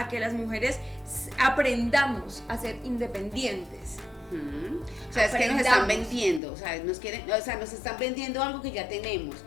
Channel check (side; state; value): right; drops out; at 6.4 s